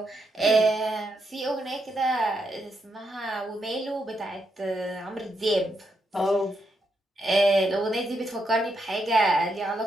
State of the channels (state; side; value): normal; both; correlation 0.80